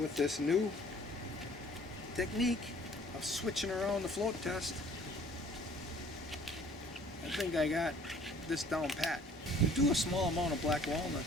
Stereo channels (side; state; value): both; normal; correlation 0.55